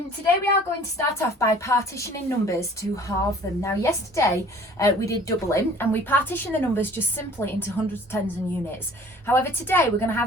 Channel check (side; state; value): both; normal; correlation 0.50